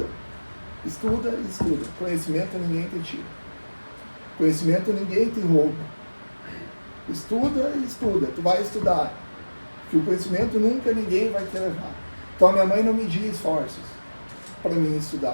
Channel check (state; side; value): inverted; both; correlation -1.00